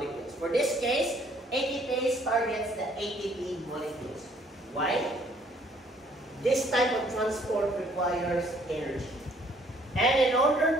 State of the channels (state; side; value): normal; both; correlation 0.62